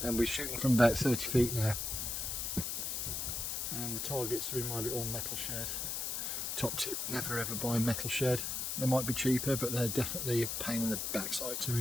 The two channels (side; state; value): left; noise; hiss, 2 dB below the sound